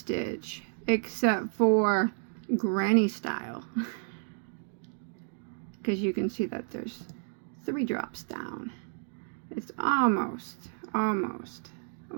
except for granny style. Because you can see that there's 3 drops down. It's almost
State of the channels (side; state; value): left; silent; 57 dB below the other